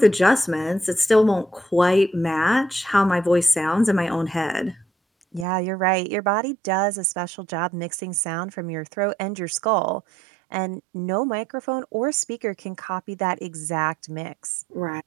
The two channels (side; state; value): left; drops out; at 5.5 s